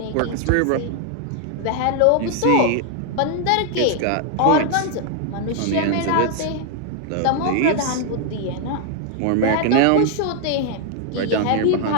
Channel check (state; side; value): different; both; correlation 0.00